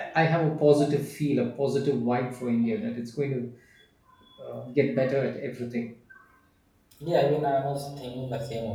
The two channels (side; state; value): both; identical; correlation 1.00